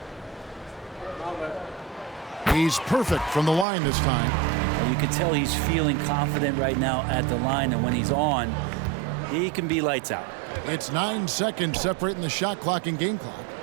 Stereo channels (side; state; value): left; drops out; at 3.7 s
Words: He's perfect from the line this time. You can tell he's feeling confident right now at the line, and when he's on, he can be lights out. It's 9 seconds separating the shot clock and game clock.